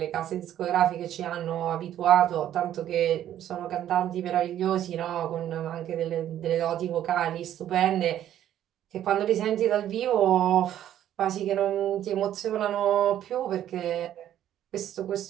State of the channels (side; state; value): left; quieter; 11.4 dB